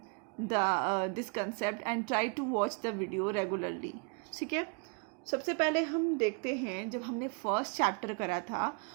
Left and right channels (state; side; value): quieter; left; 34.7 dB